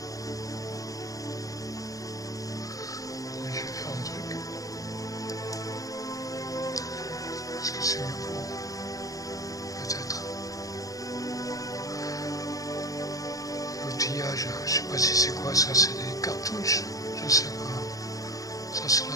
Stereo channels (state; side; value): late; right; 0.17 ms